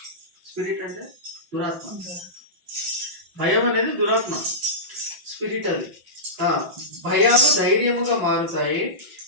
స్పిరిట్ అంటే దురాత్మ, భయం అనేది దురాత్మ, స్పిరిట్ అది. భయాలు ధైర్యముగా మారుతాయి.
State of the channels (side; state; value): left; late; 5.7 ms